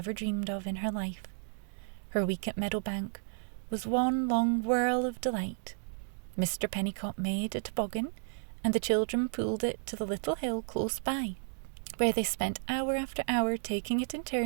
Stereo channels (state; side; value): silent; left; digital silence